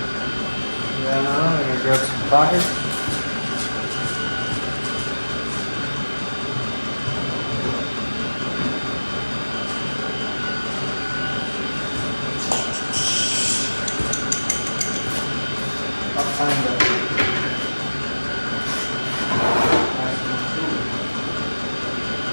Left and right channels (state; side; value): inverted; both; correlation -1.00